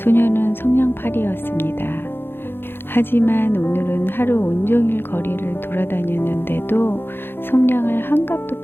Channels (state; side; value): late; right; 0.10 ms